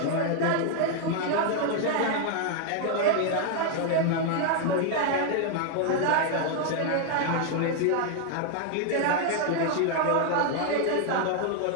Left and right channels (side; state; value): both; different; correlation 0.00